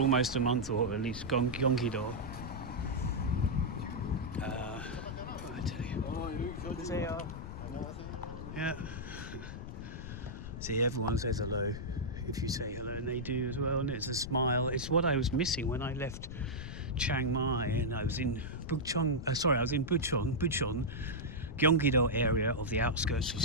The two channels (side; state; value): left; noise; rumble, 9 dB below the sound